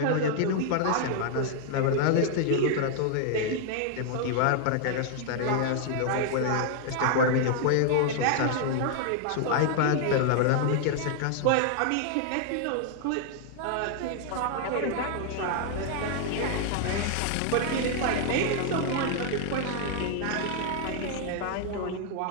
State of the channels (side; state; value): both; different; correlation 0.00